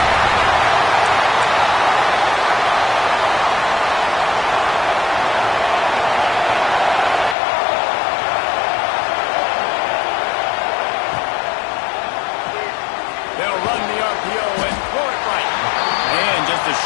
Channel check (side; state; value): right; drops out; at 7.4 s